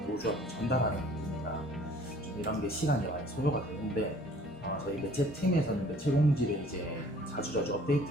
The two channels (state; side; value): normal; both; correlation 0.54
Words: 전달하는 부분이라 좀 이런 게 시간이 많이 소요가 되는데 저희 매체 팀에서는 매체 공지를 이제 자주자주 업데이트